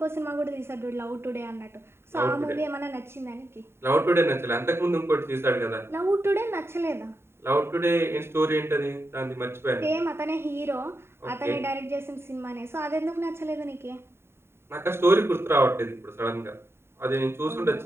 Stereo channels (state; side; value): late; left; 0.12 ms